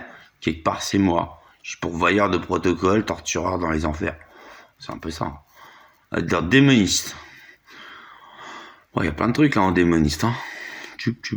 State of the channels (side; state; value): both; identical; correlation 1.00